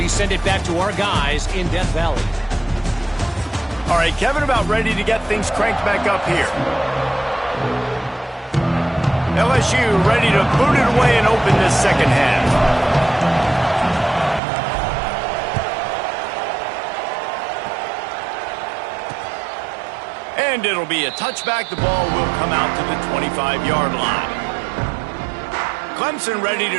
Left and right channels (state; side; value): drops out; left; at 14.4 s